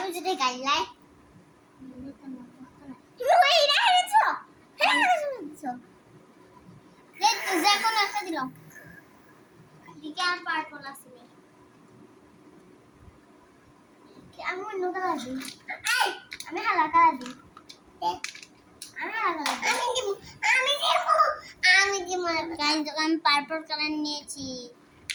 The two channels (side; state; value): both; identical; correlation 1.00